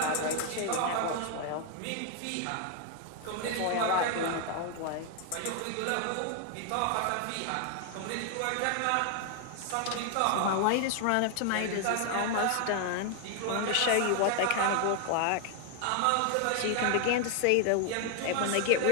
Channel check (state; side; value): different; both; correlation 0.00